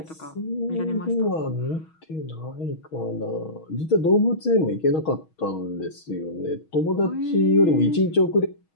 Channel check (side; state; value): right; late; 6.3 ms